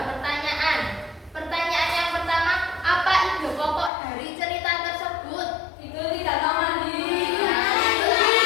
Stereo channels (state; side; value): drops out; right; at 3.9 s